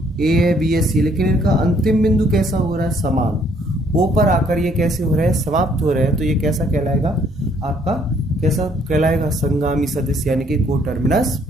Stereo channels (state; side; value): normal; both; correlation 0.65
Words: ए है, बी है, सी, लेकिन इनका अंतिम बिंदु कैसा हो रहा है, समान। ओ पर आकर ये कैसे हो रहा है, समाप्त हो रहा है। तो ये कैसा कहलाएगा आपका, कैसा कहलाएगा, संगामी सदिश, यानी कि को टर्मिनस